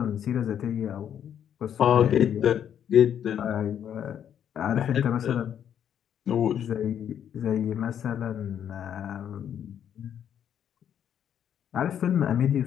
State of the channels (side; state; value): right; quieter; 9.3 dB